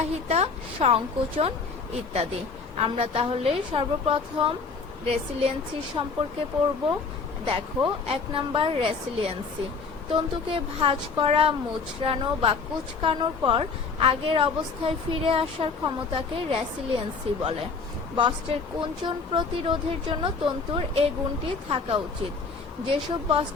সংকোচন ইত্যাদি। আমরা তাহলে সর্বপ্রথম রেসিলিয়েন্সি সম্পর্কে পড়ব। দেখো, 1 নাম্বার, রেসিলিয়েন্সি। তন্তুকে ভাঁজ করা, মুচড়ানো বা কুঁচকানোর পর আগের অবস্থায় ফিরে আসার ক্ষমতাকে রেসিলিয়েন্সি বলে। বস্ত্রের কুঞ্চন প্রতিরোধের জন্য তন্তুর এই গুণটি থাকা উচিত। যেসব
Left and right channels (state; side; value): quieter; right; 4.7 dB